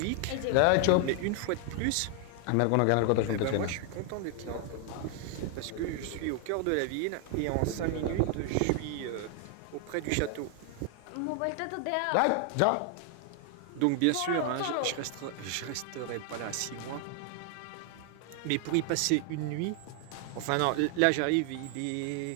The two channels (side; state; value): both; different; correlation 0.00